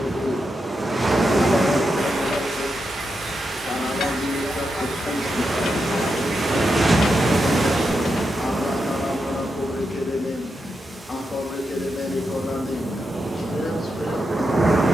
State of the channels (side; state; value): both; normal; correlation 0.86